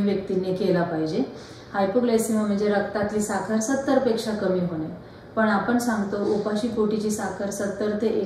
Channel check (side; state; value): both; identical; correlation 1.00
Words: व्यक्तींनी केला पाहिजे। हायपोग्लायसेमिया म्हणजे रक्तातली साखर 70 पेक्षा कमी होणे, पण आपण सांगतो उपाशी पोटीची साखर 70 ते